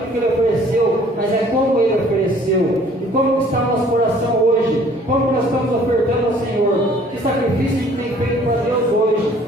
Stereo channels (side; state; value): both; normal; correlation 0.56